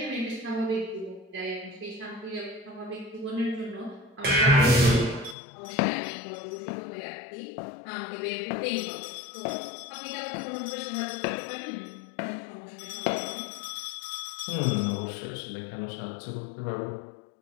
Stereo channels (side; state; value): right; drops out; at 5.4 s